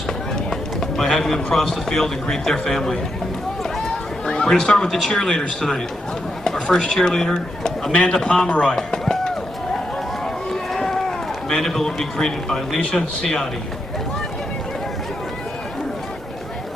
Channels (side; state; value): both; normal; correlation 0.83